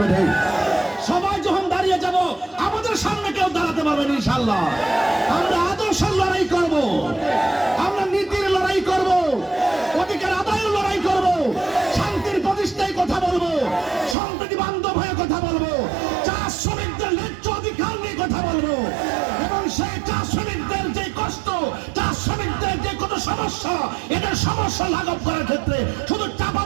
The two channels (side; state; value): left; drops out; at 14.2 s